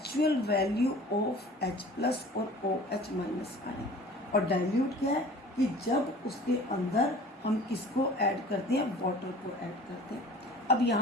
वैल्यू ऑफ H+ और OH- आयन। और डाइल्यूट क्या है कि जब उसके अंदर हम किसको ऐड करते हैं? वाटर को ऐड करते हैं। अब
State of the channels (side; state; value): both; normal; correlation 0.45